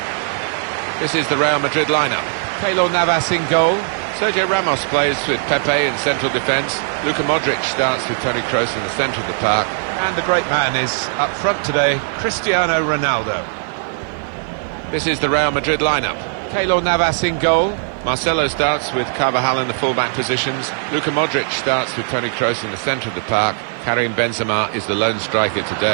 This is the Real Madrid lineup. Keylor Navas in goal. Sergio Ramos plays with Pepe in central defence. Luka Modric starts with Toni Kroos in the centre of the park. And the great man is up front today, Cristiano Ronaldo. This is the Real Madrid lineup. Keylor Navas in goal. Marcelo starts with Carvajal in the full-back positions. Luka Modric starts with Toni Kroos in the centre of the park. Karim Benzema is the lone striker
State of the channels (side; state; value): left; silent; digital silence